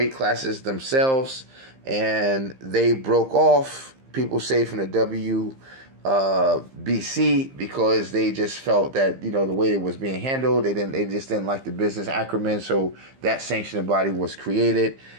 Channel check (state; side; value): late; left; 15 ms